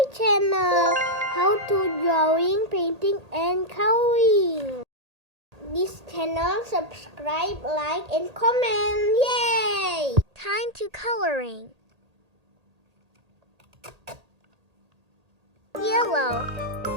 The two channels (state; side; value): late; left; 1.8 ms